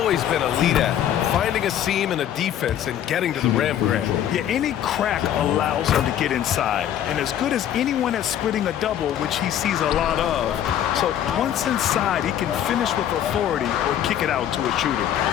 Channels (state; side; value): quieter; right; 10.6 dB